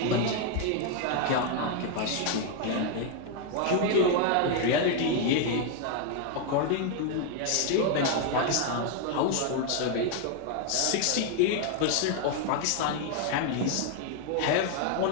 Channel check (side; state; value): both; different; correlation 0.00